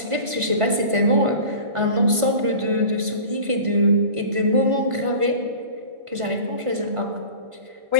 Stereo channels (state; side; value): late; left; 1.5 ms